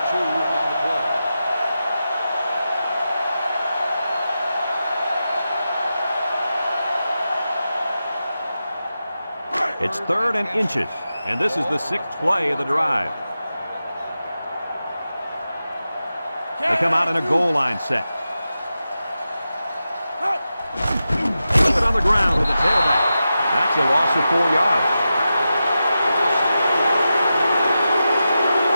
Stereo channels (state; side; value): inverted; both; correlation -0.91